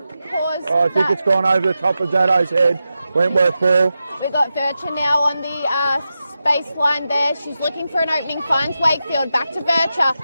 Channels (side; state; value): both; inverted; correlation -0.90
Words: think it's gone over the top of Zato's head. Wentworth ball. We've got Vircher now on the baseline there. She's looking for an opening, finds Wakefield, back to Vircher.